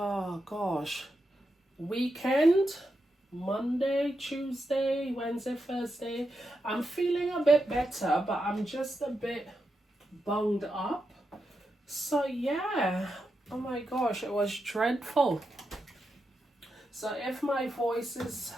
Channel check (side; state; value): both; normal; correlation 0.86